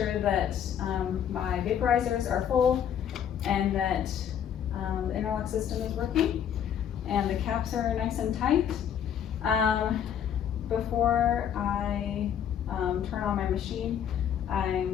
that my vaporizers are full and that the interlock system is working and the caps are nice and tight. Before I turn on my machine,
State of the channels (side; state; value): right; quieter; 9.0 dB